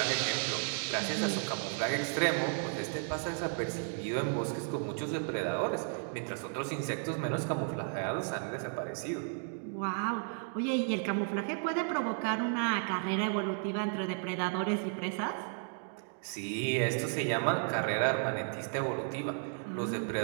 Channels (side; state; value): left; silent; 55 dB below the other